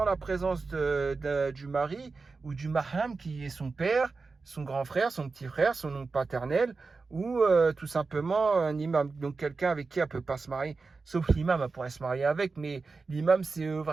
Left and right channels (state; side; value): quieter; left; 4.2 dB